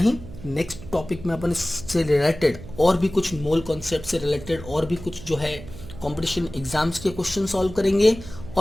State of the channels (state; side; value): noise; right; hum, 14 dB below the sound